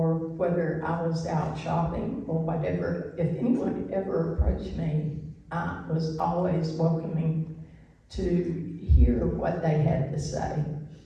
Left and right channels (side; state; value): both; identical; correlation 1.00